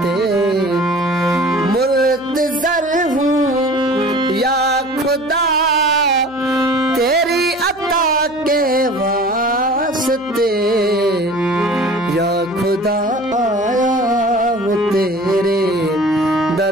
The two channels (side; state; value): right; noise; hum, 27 dB below the sound